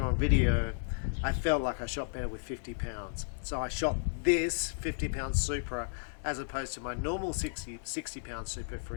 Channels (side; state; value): right; silent; digital silence